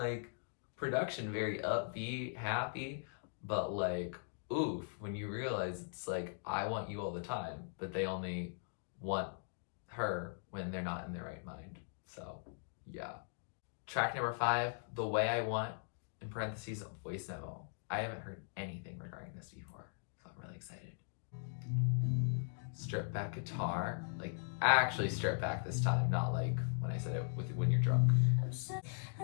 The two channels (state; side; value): silent; right; digital silence